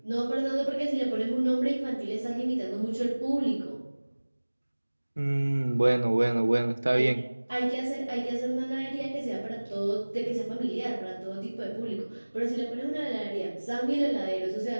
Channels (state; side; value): inverted; both; correlation -1.00